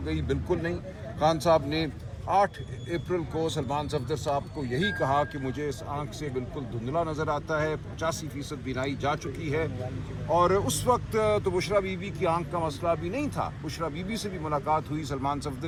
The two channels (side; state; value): both; identical; correlation 1.00